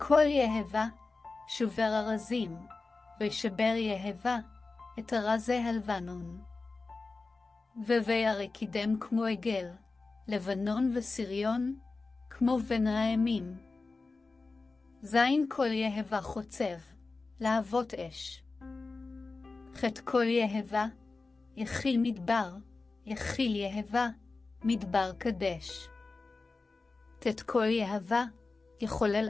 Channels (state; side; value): quieter; right; 3.8 dB